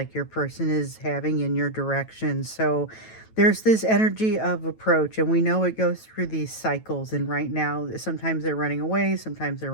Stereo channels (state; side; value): late; right; 9.1 ms